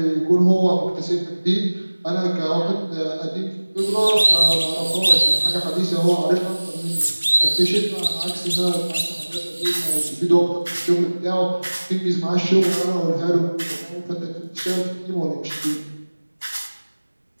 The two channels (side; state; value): both; inverted; correlation -1.00